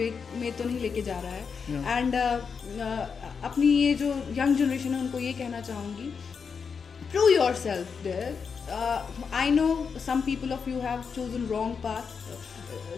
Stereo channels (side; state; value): right; quieter; 5.9 dB